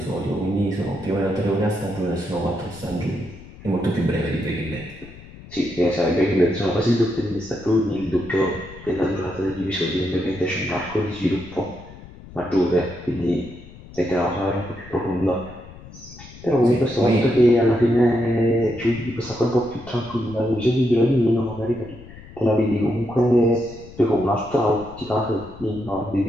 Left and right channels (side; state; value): left; noise; rumble, 18 dB below the sound